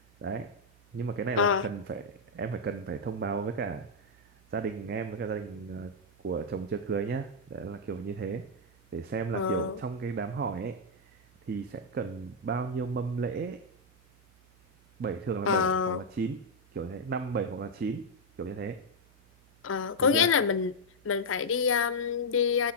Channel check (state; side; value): noise; right; hum, 28 dB below the sound